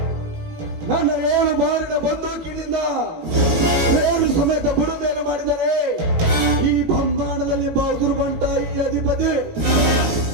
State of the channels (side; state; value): left; late; 18 ms